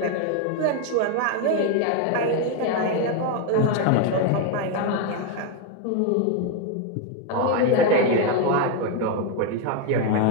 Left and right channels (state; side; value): different; both; correlation 0.02